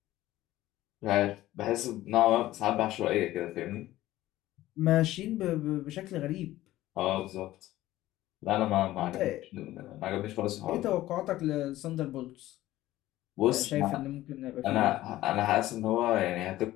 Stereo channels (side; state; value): right; quieter; 15.5 dB